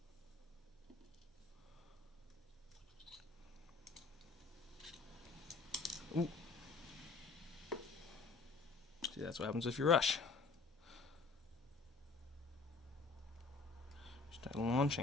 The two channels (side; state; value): right; quieter; 4.1 dB